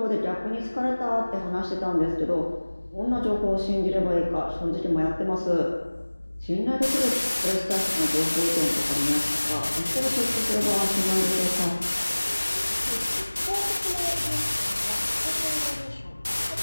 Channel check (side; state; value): both; inverted; correlation -1.00